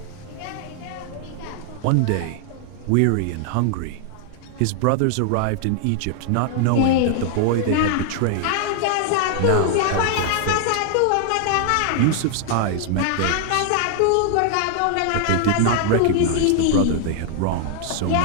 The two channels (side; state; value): both; different; correlation 0.00